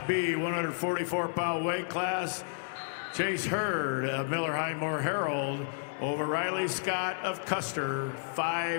B, 144-pound weight class. Chase Hurd of Miller Highmore Herald over Riley Scott of Custer,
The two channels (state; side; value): silent; right; digital silence